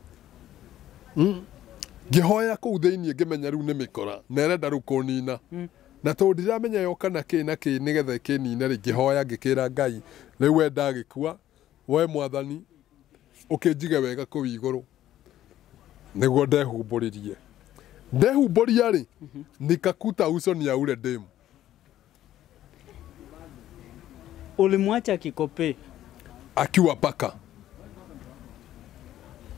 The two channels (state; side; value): quieter; right; 12.8 dB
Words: ngihoya kũu thĩinĩ ngĩmenya rĩu nĩ mĩkora na ĩrenda rĩu kũnina na tondu ndiramenya yoka na kĩ nigetha kĩnine ri ngĩhoya ngĩkĩra Ngai rĩu we ndagĩkua we Mwathani ũkĩnjige wega kũu igũrũ niguo ndehumbũria ri nikakuta uso ni ya ule demu. Ulimwacha Kikope akiwa paka.